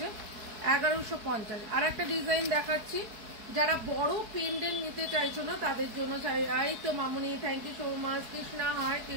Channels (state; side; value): late; left; 4.7 ms